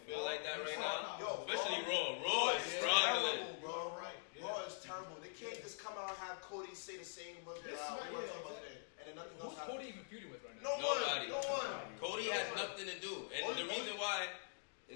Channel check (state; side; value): silent; right; digital silence